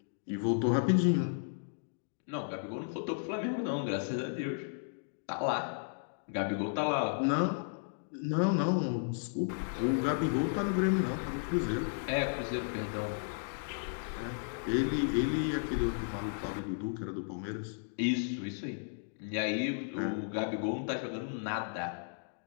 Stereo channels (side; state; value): right; silent; digital silence